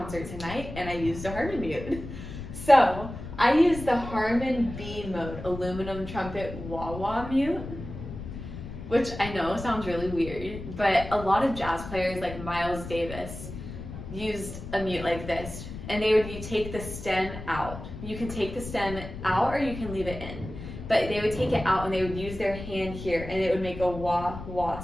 tonight and I used a Harmon mute. So I use the Harmon B mode aluminum trumpet wah-wah mute, which I know sounds really weird, but a lot of jazz players like Miles Davis used a mute like this, and you take the stem out. You can take the stem out or you can leave it in. But they would take it out and they would use their hand here and it would make a wah-wah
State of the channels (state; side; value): noise; left; rumble, 10 dB below the sound